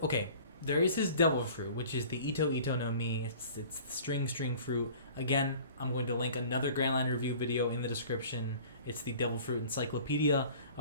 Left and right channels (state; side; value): inverted; both; correlation -0.46